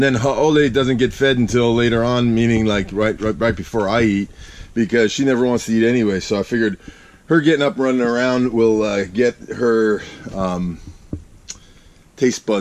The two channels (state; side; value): identical; both; correlation 1.00